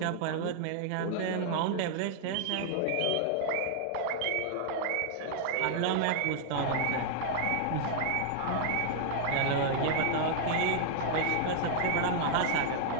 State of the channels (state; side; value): different; both; correlation -0.01